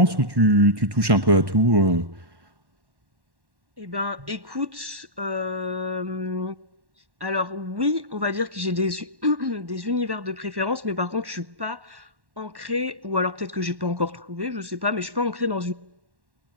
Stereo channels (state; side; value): late; left; 1.1 ms